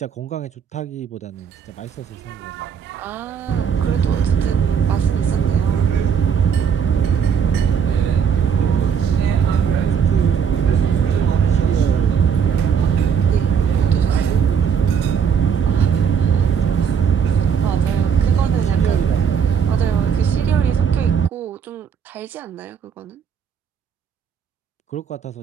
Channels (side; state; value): left; quieter; 7.2 dB